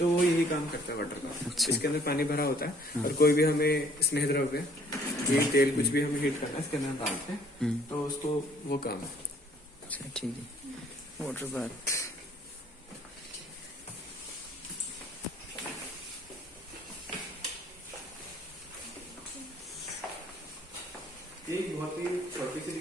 वो यही काम करता है वाटर का। इसके अंदर पानी भरा होता है और कोई भी हमें स्नेह द्रव्य ये तेल कुछ भी हमें हीट करना है इसके अंदर डालते हैं, तो उसको वो काम है। अच्छा ठीक है। Water bath. ये एक बहुत ही छोटी सी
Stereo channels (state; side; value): normal; both; correlation 0.59